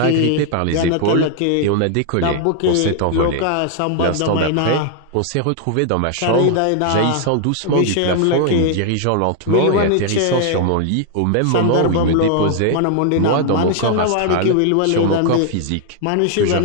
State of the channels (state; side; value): different; both; correlation 0.00